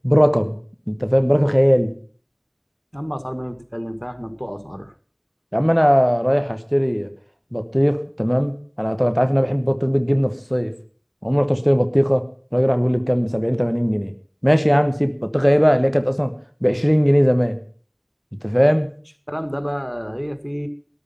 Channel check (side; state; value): both; identical; correlation 1.00